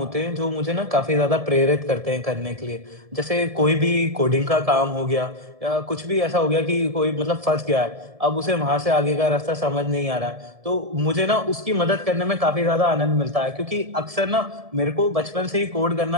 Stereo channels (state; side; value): late; left; 1.7 ms